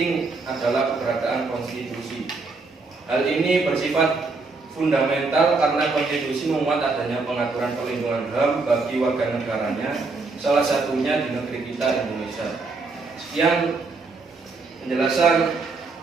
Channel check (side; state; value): left; quieter; 3.9 dB